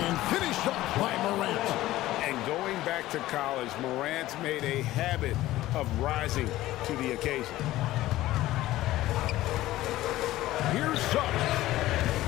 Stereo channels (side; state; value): right; quieter; 16.0 dB